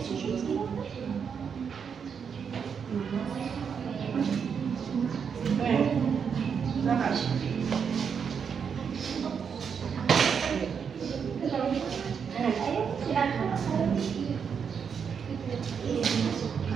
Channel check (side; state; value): left; quieter; 6.8 dB